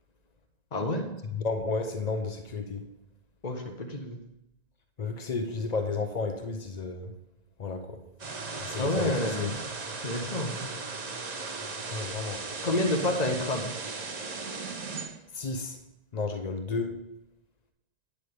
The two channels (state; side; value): late; right; 1.9 ms